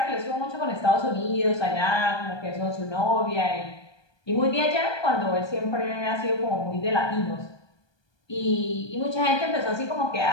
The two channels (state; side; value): late; right; 1.2 ms